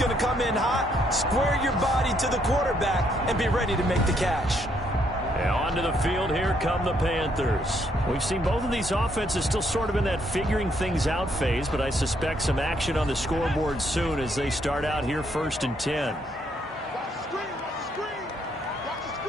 to come in hot. Square your body to the quarterback and be ready to make the catch. Now onto the field, here come the Panthers. We've seen both of these offenses still sort of in that figuring things out phase, but I suspect some action on the scoreboard soon as they start out here 1st and 10.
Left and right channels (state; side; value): normal; both; correlation 0.72